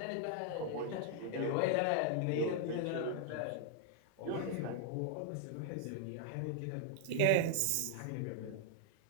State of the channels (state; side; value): different; both; correlation 0.00